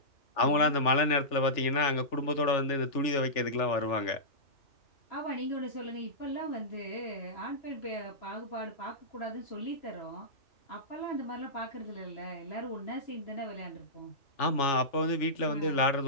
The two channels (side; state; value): right; late; 3.4 ms